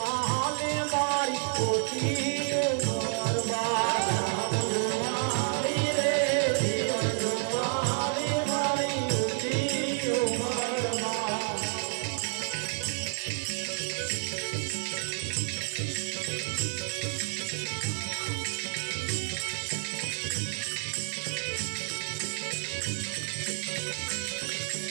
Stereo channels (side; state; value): left; silent; digital silence